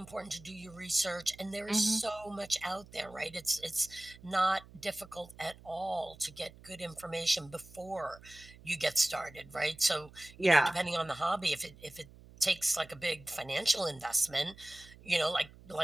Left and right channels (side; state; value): right; noise; hum, 21 dB below the sound